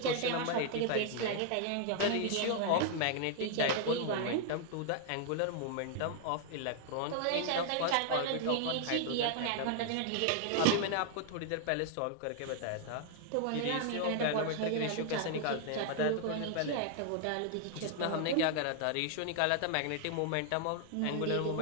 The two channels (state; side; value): different; both; correlation 0.00